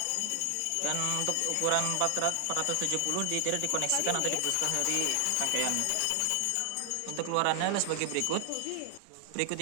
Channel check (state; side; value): different; both; correlation 0.00